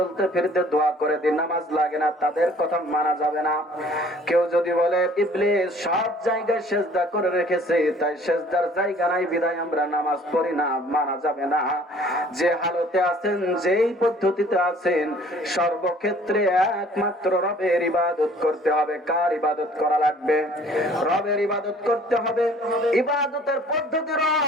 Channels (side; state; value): both; normal; correlation 0.54